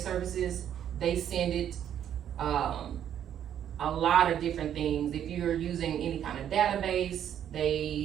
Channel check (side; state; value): left; quieter; 9.9 dB